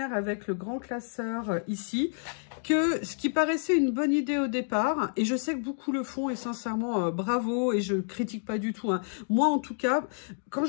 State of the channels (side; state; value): right; silent; digital silence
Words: avec le grand classeur ici, que ce qui paraissait une bonne idée au départ, et je sais que beaucoup le font, et sincèrement, bravo, et je critique pas du tout. Hein. Moi, en tout cas, quand